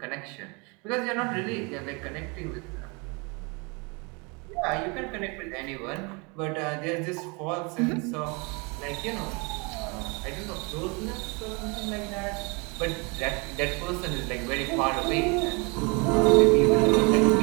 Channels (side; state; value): left; quieter; 30.3 dB